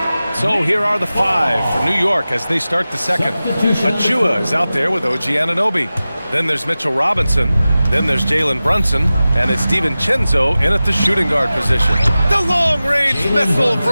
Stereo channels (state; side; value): inverted; both; correlation -0.96